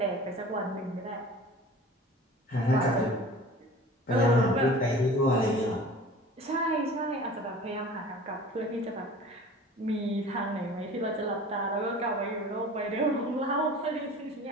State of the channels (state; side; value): normal; both; correlation 0.42